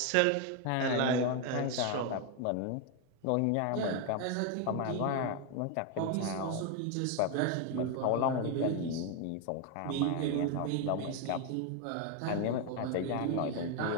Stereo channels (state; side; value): different; both; correlation 0.01